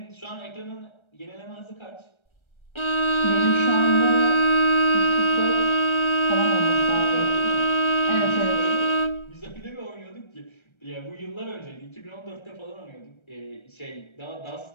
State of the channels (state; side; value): late; right; 1.3 ms